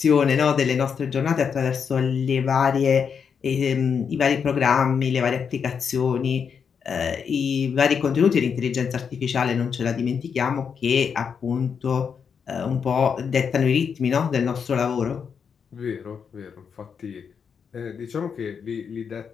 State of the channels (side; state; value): right; quieter; 6.6 dB